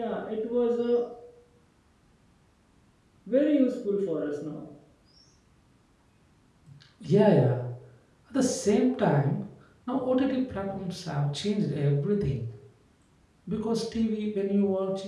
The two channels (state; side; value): identical; both; correlation 1.00